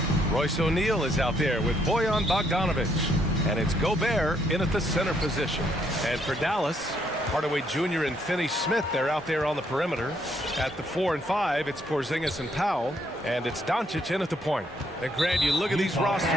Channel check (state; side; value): normal; both; correlation 0.71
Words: Royce O'Neal is out there with Bojan Bogdanovic. And it's Gobert in at the center position. And for Dallas, Hardaway Jr. and Finney-Smith, they're out there on the perimeter. At the 4 and 5, it's Porzingis and Powell. And it's Doncic in at the point. And Grant, you look at these rosters,